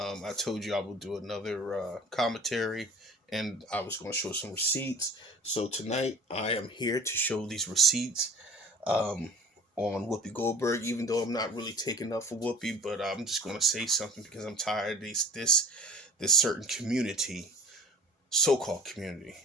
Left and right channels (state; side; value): normal; both; correlation 0.43